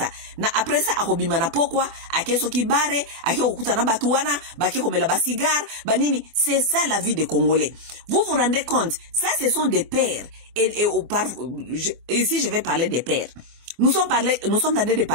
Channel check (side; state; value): left; late; 24 ms